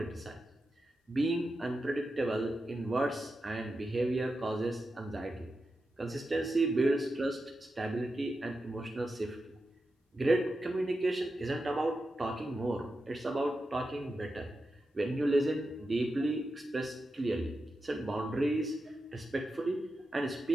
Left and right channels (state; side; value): normal; both; correlation 0.90